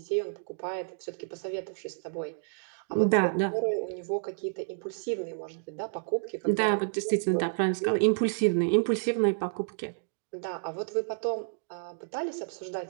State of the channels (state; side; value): silent; left; digital silence